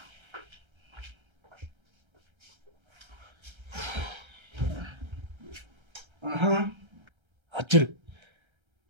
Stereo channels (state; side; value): late; left; 1.3 ms